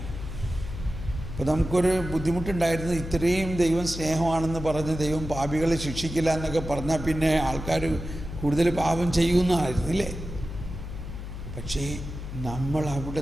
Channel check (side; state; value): left; noise; hum, 9 dB below the sound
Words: അപ്പോൾ നമുക്കൊരു ബുദ്ധിമുട്ടുണ്ടായിരുന്നു. ഇത്രയും ദൈവം സ്നേഹമാണെന്ന് പറഞ്ഞ് ദൈവം പാപികളെ ശിക്ഷിക്കില്ല എന്നൊക്കെ പറഞ്ഞാൽ പിന്നെ ആൾക്കാർ കൂടുതൽ പാപം ചെയ്യുന്നതായിരുന്നില്ലേ? പക്ഷേ നമ്മൾ